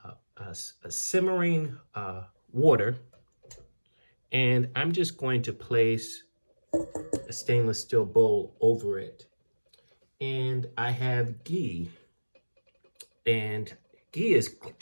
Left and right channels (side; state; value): both; inverted; correlation -1.00